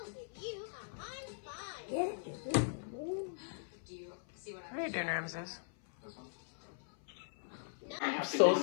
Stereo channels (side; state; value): right; silent; 51 dB below the other